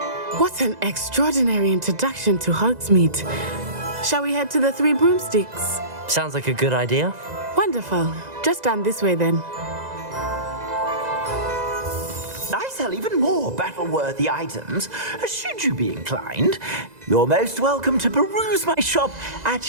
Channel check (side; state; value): left; late; 2.0 ms